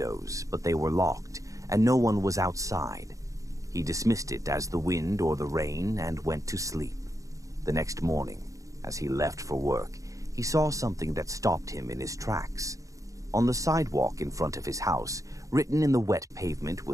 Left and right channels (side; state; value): left; late; 0.16 ms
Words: but they were locked, and no one was outside. He dismissed it as the wind or the rain and went to sleep. The next morning, As he left for work, he saw something that stopped him in his tracks. On the sidewalk in front of his house, written in the wet pavement